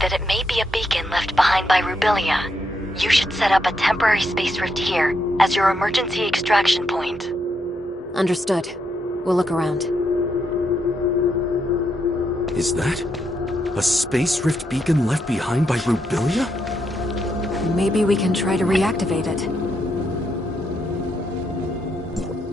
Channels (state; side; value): normal; both; correlation 0.79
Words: it may be a beacon left behind by Rubilia. You should set up a temporary Space Rift here as your emergency extraction point. Understood. We'll look around. Is that a Space Rift beacon left behind by Rubilia? Maybe we can try to reactivate it.